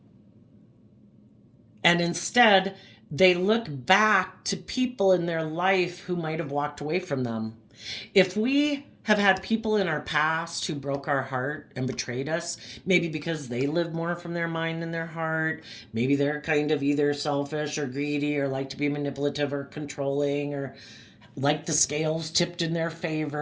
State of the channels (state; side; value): identical; both; correlation 1.00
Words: And instead, they look back to people in their life who might have walked away from them. If we have had people in our past who broke our heart and betrayed us, maybe because they lived more from their mind than their heart, maybe they're kind of either selfish or greedy or like to be manipulative or controlling, or like the scales tipped in their